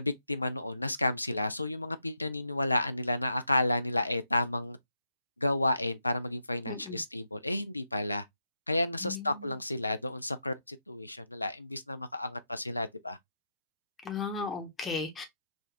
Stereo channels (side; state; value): both; inverted; correlation -0.82